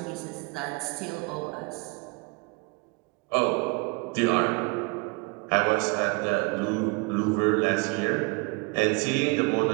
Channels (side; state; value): left; quieter; 29.7 dB